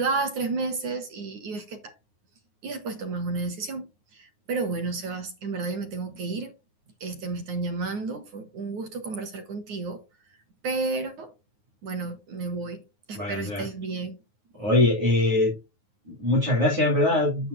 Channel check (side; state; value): left; late; 9.5 ms